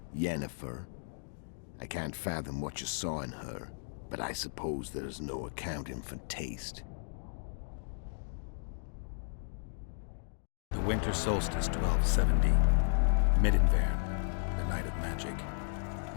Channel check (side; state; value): right; silent; digital silence